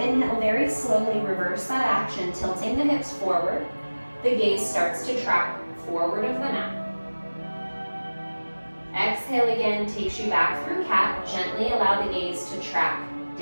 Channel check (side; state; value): both; inverted; correlation -1.00